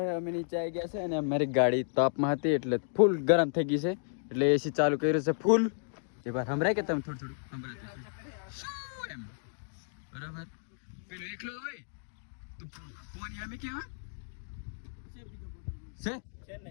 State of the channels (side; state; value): right; silent; digital silence